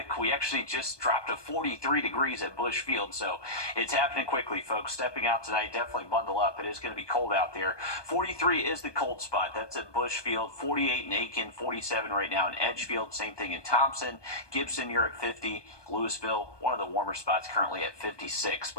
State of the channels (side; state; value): right; late; 1.2 ms